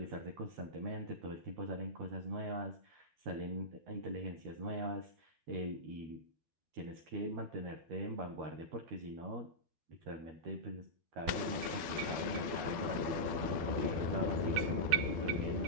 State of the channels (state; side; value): late; left; 12 ms